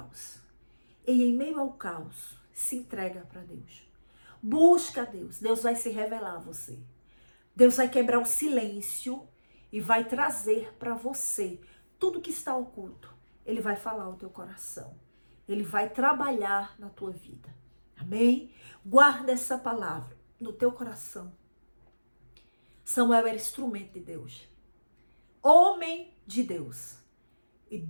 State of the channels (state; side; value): inverted; both; correlation -1.00